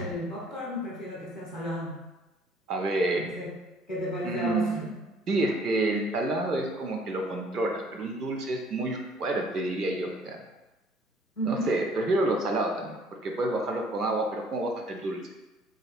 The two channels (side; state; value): both; normal; correlation 0.59